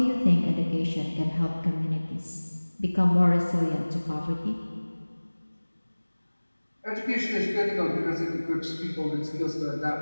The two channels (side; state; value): both; inverted; correlation -1.00